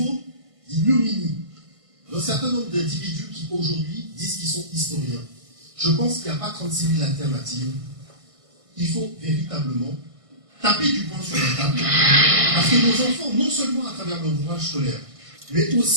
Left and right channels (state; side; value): late; left; 1.6 ms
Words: certain nombre d'individus qui aujourd'hui disent qu'ils sont historiens. Je pense qu'il n'y a pas 36 000 alternatives. Il faut véritablement taper du poing sur la table, parce que nos enfants, non seulement à travers leur ouvrage scolaire, mais